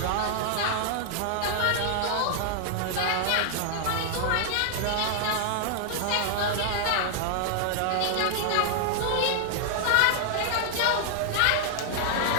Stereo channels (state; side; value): different; both; correlation 0.00